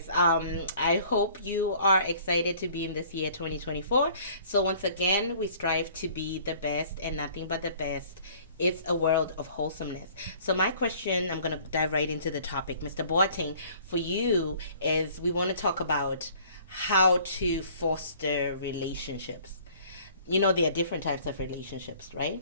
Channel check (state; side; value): inverted; both; correlation -0.54